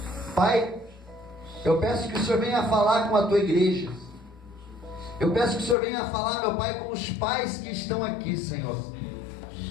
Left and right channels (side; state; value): right; drops out; at 5.8 s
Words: Pai, eu peço que o Senhor venha falar com a tua igreja. Eu peço que o Senhor venha falar, meu Pai, com os pais que estão aqui, Senhor.